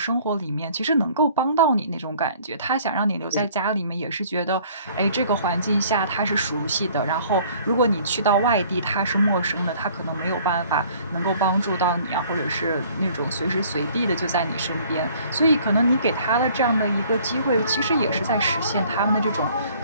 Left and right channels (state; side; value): inverted; both; correlation -0.55